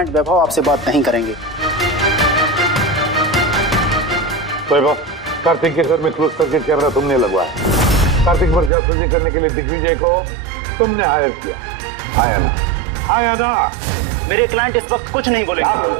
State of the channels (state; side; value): drops out; left; at 8.7 s